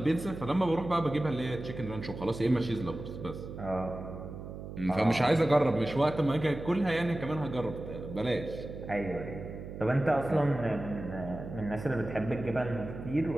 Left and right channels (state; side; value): noise; right; hum, 10 dB below the sound